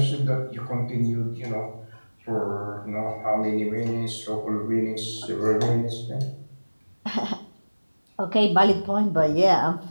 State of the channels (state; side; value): inverted; both; correlation -1.00